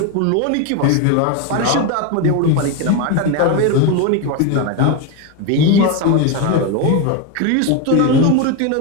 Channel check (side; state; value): both; different; correlation 0.02